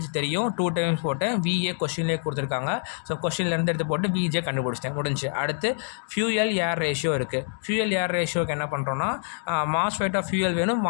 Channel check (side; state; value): right; silent; digital silence